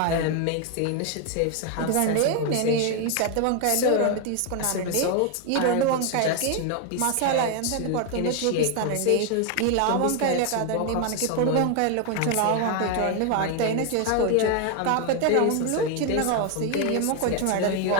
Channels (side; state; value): both; different; correlation 0.01